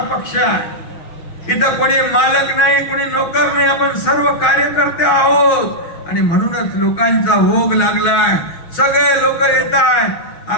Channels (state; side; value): late; right; 6.2 ms